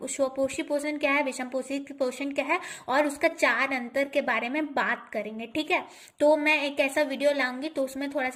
पोषण क्या है, विषमपोषी पोषण क्या है और उसका 4 अंतर के बारे में बात करेंगे। ठीक है, तो मैं एक ऐसा वीडियो लाऊंगी तो उसमें थोड़ा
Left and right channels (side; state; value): both; identical; correlation 1.00